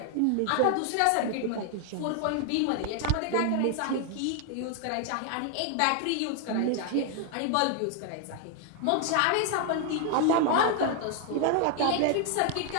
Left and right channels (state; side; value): different; both; correlation 0.00